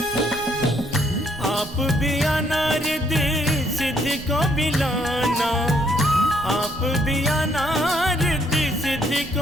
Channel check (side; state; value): right; noise; rumble, 17 dB below the sound